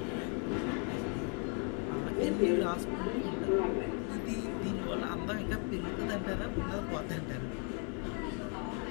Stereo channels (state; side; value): quieter; right; 38.6 dB